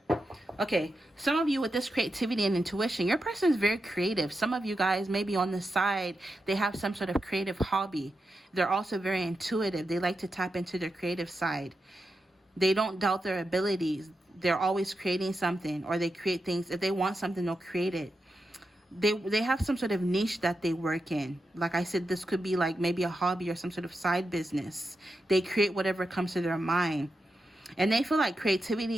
Okay, some of you with this creativity and intuition, your person is very creative. Some of you guys, maybe on the side, they have some sort of creative hobby. They're also very intuitive. They like to tap into their creative side. They don't doubt their abilities. They're always creating something, or they create things. If they want something, they'll create it. They have some sort of niche that they work in. Like I said, this could be like maybe a hobby or some sort of side business. They create whatever comes to their mind. And they feel like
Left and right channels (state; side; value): normal; both; correlation 0.88